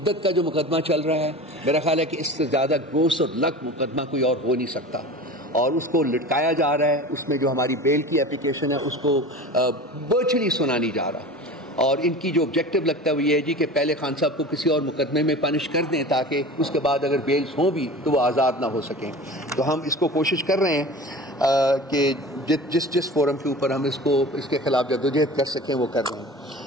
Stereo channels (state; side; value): normal; both; correlation 0.35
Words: کا جو مقدمہ چل رہا ہے میرا خیال ہے کہ اس سے زیادہ گروس اور لک مقدمہ کوئی اور ہو نہیں سکتا, اور اس کو لٹکایا جا رہا ہے. اس میں جو ہماری بیل کی اپلیکیشن ہے اس کو ورچولی سنا نہیں جا رہا, اور ان کی جو آبجیکٹو لگتا ہے وہ یہ ہے جی کہ پہلے خان صاحب کو کسی اور مقدمے میں پنش کر دیں تاکہ اس کے بعد اگر بیلز ہوں بھی تو وہ آزاد نہ ہو سکیں. تو ہم اس کو کوشش کر رہے ہیں کہ جس فورم کے اوپر ہم اس کے خلاف جدوجہد کر سکیں وہ کر رہے ہیں.